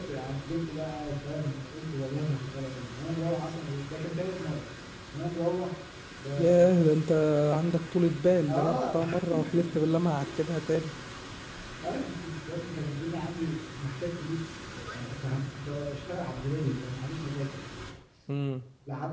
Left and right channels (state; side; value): identical; both; correlation 1.00